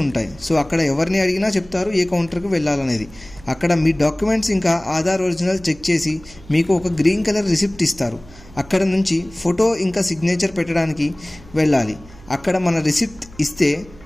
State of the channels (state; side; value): noise; right; hum, 21 dB below the sound